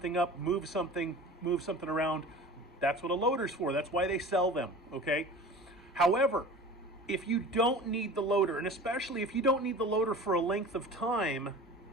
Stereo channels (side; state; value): both; normal; correlation 0.39